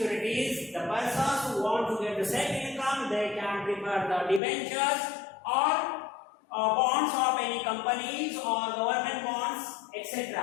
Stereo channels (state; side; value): drops out; right; at 4.4 s